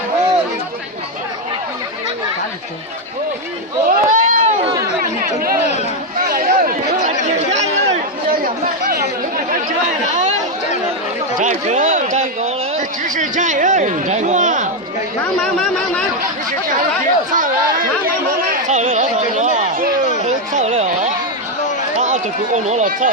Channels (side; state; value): both; normal; correlation 0.04